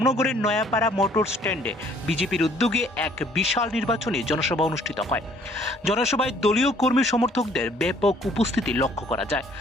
নয়াপাড়া মোটর স্ট্যান্ডে বিজেপির উদ্যোগে এক বিশাল নির্বাচনী জনসভা অনুষ্ঠিত হয়। জনসভায় দলীয় কর্মী সমর্থকদের ব্যাপক উপস্থিতি লক্ষ্য করা যায়,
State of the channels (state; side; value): normal; both; correlation 0.60